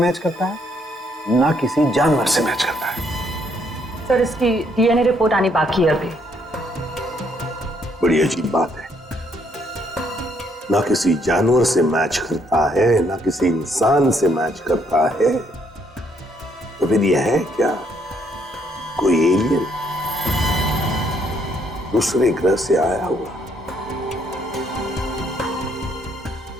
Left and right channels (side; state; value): both; normal; correlation 0.71